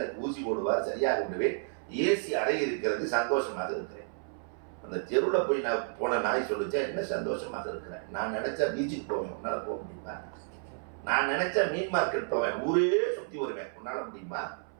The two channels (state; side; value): silent; left; 57 dB below the other